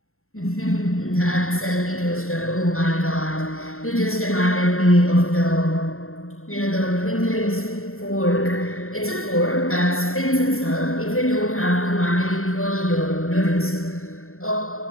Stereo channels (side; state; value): right; late; 0.62 ms